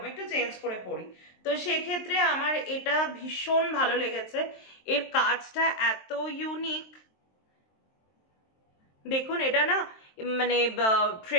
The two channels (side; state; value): right; late; 23 ms